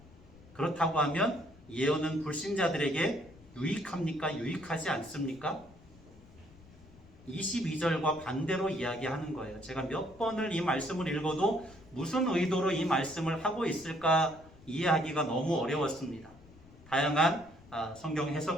그렇다고 하면 예언은 불신자들에게 유익합니까? 유익하지 않습니까? 22절과 반대로 이야기하는 거예요. 제가 몇 번을 이 말씀을 읽어도 무슨 의도로 이 말씀을 하고 있을까 이해하기가 너무 어려웠습니다. 다양한 성경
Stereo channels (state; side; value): noise; left; rumble, 23 dB below the sound